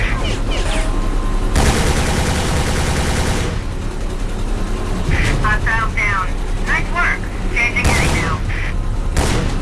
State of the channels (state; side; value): identical; both; correlation 1.00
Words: Hostiles down. Nice work. Changing heading now.